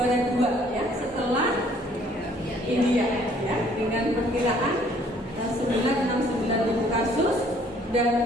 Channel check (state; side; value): normal; both; correlation 0.60